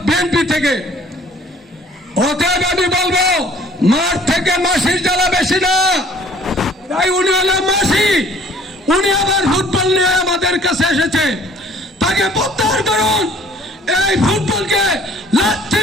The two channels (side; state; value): both; normal; correlation 0.55